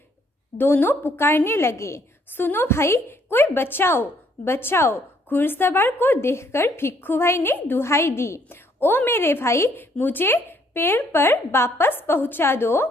दोनों पुकारने लगे, सुनो भाई, कोई बचाओ बचाओ। घुड़सवार को देखकर भिक्खू भाई ने दुहाई दी, ओ मेरे भाई, मुझे पेड़ पर वापस पहुंचा दो।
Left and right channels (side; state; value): both; normal; correlation 0.67